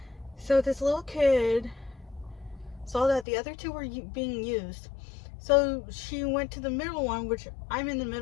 So this little kid saw that the other two were being used. So she went to the middle one, which I'm in the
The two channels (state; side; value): drops out; right; at 3.2 s